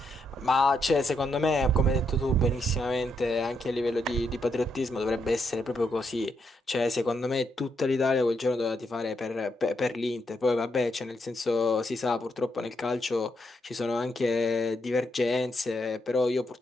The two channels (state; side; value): normal; both; correlation 0.79